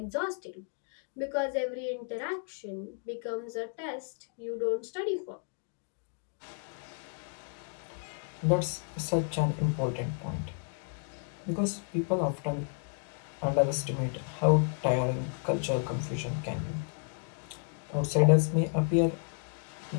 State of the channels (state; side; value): silent; right; 56 dB below the other